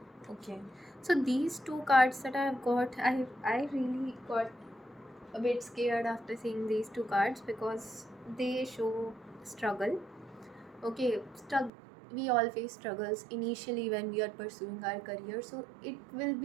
Okay, so these two cards that I've got, I really got a bit scared after seeing these two cards because they show struggle. Okay, we all face struggles initially when we are pursuing our career, so it will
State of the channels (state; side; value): drops out; left; at 11.7 s